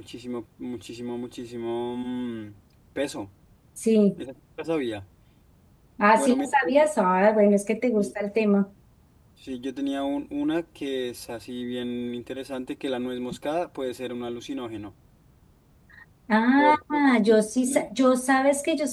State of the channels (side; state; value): both; identical; correlation 1.00